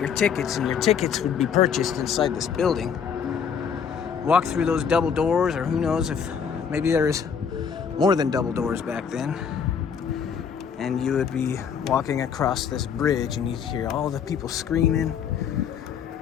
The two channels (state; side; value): quieter; right; 7.1 dB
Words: tickets, and your tickets would be purchased inside this building. Walk through those double doors, or who knows if maybe there is more than double doors back then, and you would be walking across this bridge and you'd hear all the people screaming.